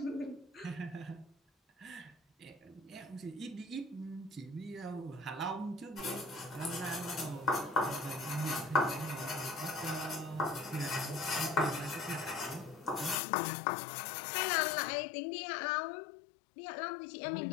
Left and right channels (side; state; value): right; drops out; at 13.2 s